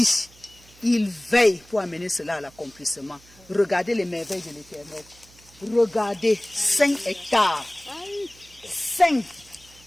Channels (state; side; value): noise; right; hum, 26 dB below the sound